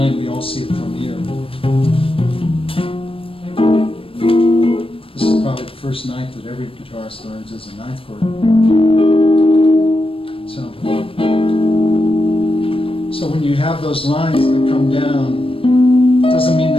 we all see it from here. This is probably the first ninth that every guitarist learns as a ninth chord. So when you have those lines that come down, it doesn't mean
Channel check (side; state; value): right; late; 0.26 ms